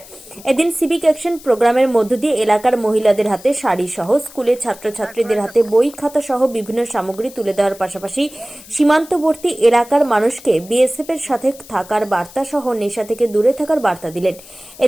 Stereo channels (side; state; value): left; noise; hiss, 20 dB below the sound